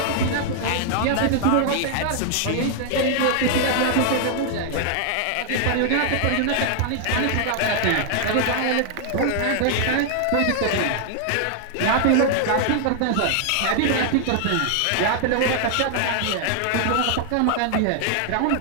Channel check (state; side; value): different; both; correlation 0.00